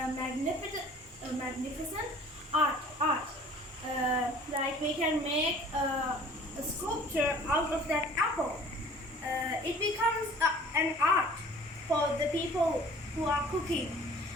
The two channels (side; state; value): both; normal; correlation 0.50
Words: art. Like we can make a sculpture out of that apple. It becomes an art for the people who are cooking.